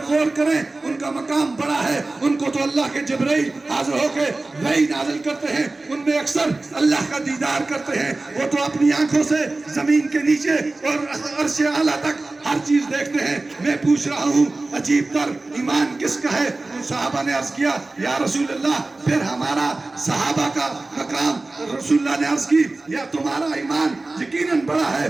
غور کریں، ان کا مقام بڑا ہے۔ ان کو تو اللہ کے جبرائیل حاضر ہو کے وحی نازل کرتے ہیں، ان میں اکثر اللہ کا دیدار کرتے ہیں، وہ تو اپنی آنکھوں سے زمین کے نیچے اور عرش اعلیٰ تک ہر چیز دیکھتے ہیں۔ میں پوچھ رہا ہوں عجیب تر ایمان کس کا ہے؟ صحابہ نے عرض کیا یا رسول اللہ پھر ہمارا صحابہ کا مقام۔ رسول اللہ نے عرض کی یا تمہارا ایمان یقیناً بڑا ہے،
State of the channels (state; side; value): quieter; left; 3.2 dB